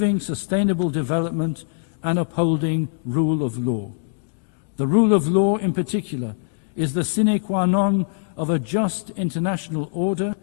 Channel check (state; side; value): silent; right; digital silence